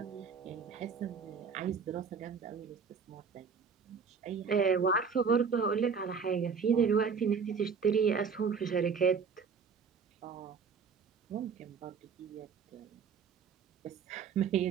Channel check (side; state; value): left; quieter; 6.0 dB